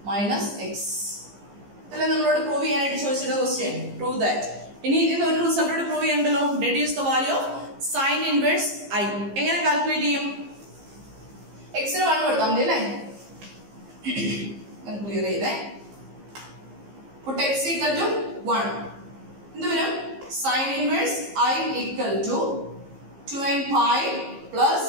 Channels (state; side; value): late; left; 15 ms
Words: Minus X. ഇതല്ലേ നമ്മളോട് prove ചെയ്യാനായിട്ട് ചോദിച്ചിട്ട് question. Prove that. ഇനി ഇതിന് ഒരു റിസൾട്ടോട് പ്രൂവ് ചെയ്യണ്ടല്ലോ. Deduce the value of sine inverse I. എങ്ങനെ കാൽക്കുലേറ്റ് ചെയ്യും? എക്സിന് 1 കൊടുത്താൽ മതി അല്ലേ? ക്ലിയർ ചെയ്തേ. put x equal to 1. എന്ത് വരും? Sign inverse I equal to 2n pi plus